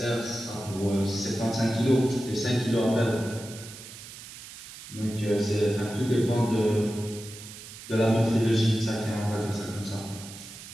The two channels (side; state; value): right; noise; hiss, 14 dB below the sound